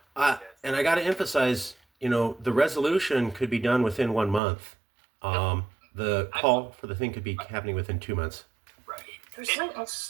And I got to emphasize, the resolution could be done within 1 month. The call for the thing could be happening within 2 months. Right. There's something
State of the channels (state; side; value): drops out; left; at 4.4 s